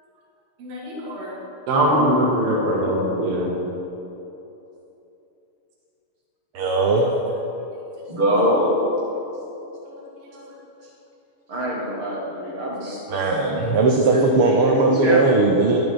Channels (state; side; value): late; left; 6.7 ms